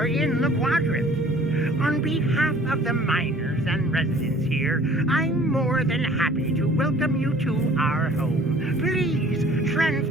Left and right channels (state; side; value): normal; both; correlation 0.52